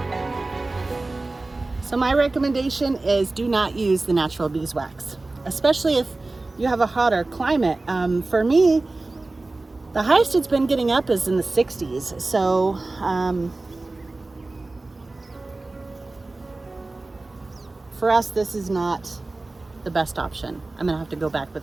So my recommendation is do not use the natural beeswax, especially if you have a hotter climate. For me, the highest it's been getting up is in the 60s. So for us, this is not the best option. I'm gonna have to go back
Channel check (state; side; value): quieter; left; 3.2 dB